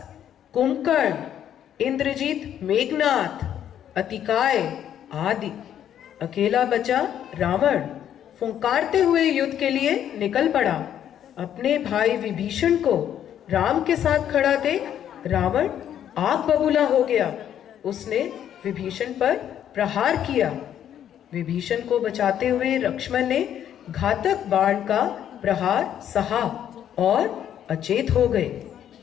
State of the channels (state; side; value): quieter; right; 10.1 dB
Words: कुंभकर्ण, इंद्रजीत, मेघनाथ, अतिकाय आदि। अकेला बचा रावण। फुंकारते हुए युद्ध के लिए निकल पड़ा। अपने भाई विभीषण को राम के साथ खड़ा देख रावण आग बबूला हो गया। उसने विभीषण पर प्रहार किया। विभीषण को बचाते हुए लक्ष्मण ने घातक बाण का प्रहार सहा और अचेत हो गए।